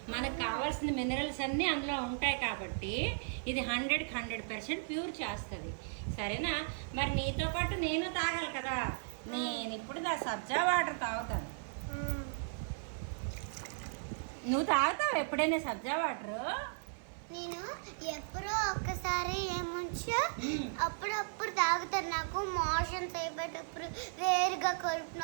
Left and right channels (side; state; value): left; silent; 54 dB below the other